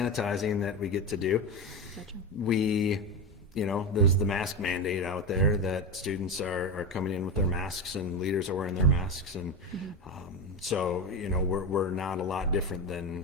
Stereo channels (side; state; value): both; normal; correlation 0.18